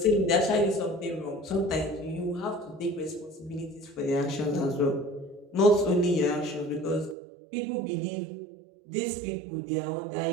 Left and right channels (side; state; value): left; drops out; at 7.2 s